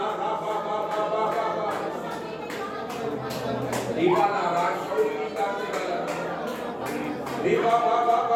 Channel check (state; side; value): identical; both; correlation 1.00